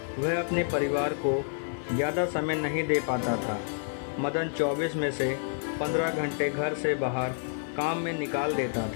वह अपने परिवार को ज़्यादा समय नहीं दे पाता था। मदन 24 में से 15 घंटे घर से बाहर काम में निकाल देता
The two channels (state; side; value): silent; right; 59 dB below the other